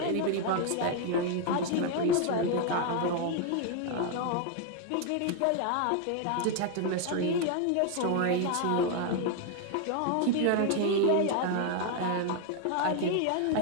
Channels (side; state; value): both; different; correlation 0.01